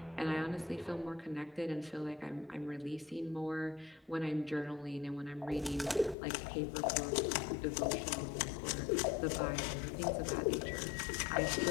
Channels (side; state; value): right; drops out; at 6.2 s